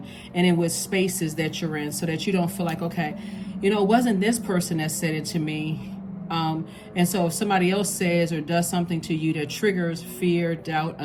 and in what spaces that you're in so that you don't feel like, okay, you know, it wasn't this person that said it to me. And so if somebody else says or does something to you that triggers fear, doubt,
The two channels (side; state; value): both; identical; correlation 1.00